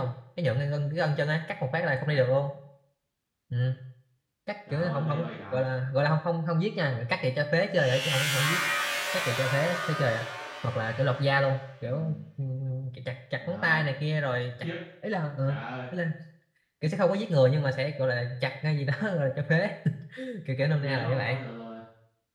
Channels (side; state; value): both; identical; correlation 1.00